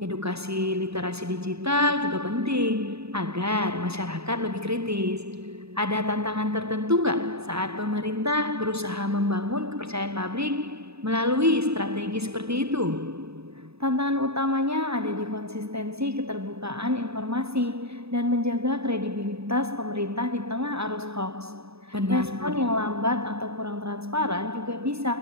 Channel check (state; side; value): late; left; 0.79 ms